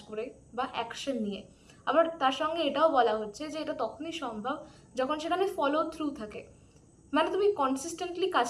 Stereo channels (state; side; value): identical; both; correlation 1.00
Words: করে বা অ্যাকশন নিয়ে। আবার তার সঙ্গে এটাও বলা হচ্ছে যে এটা তখনই সম্ভব যখন সেখানে ফলো থ্রু থাকে, মানে তুমি কনসিস্টেন্টলি